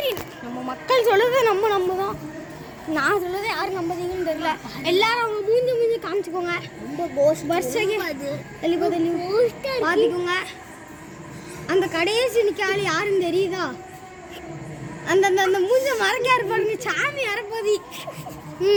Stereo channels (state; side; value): identical; both; correlation 1.00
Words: நம்ம மக்கள் சொல்லுறது நம்ம தான். நான் சொல்லுறது யாரும் நம்புறீங்கன்னு தெரியல. எல்லாரும் அவங்க மூஞ்சி காமிச்சுக்கோங்க. பாத்துக்கோங்க. அந்த கடைசி நிக்காலி யாருன்னு தெரியுதா? அந்த அந்த அந்த மூஞ்ச மறைக்காரு பாருங்க, சாமி அரைப்பதி.